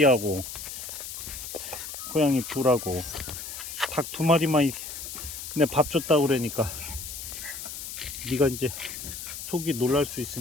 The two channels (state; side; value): noise; left; hiss, 8 dB below the sound